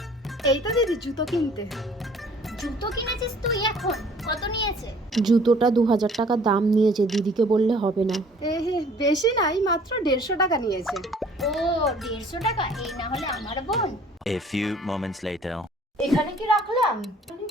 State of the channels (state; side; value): normal; both; correlation 0.54